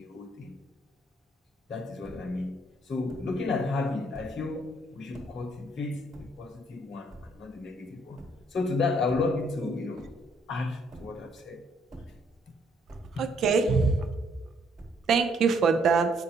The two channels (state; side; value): normal; both; correlation 0.67